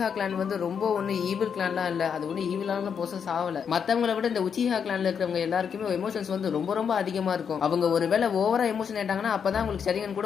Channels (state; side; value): quieter; right; 7.1 dB